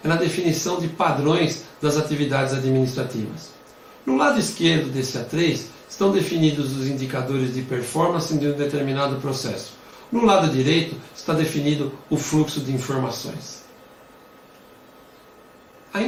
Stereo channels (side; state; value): both; identical; correlation 1.00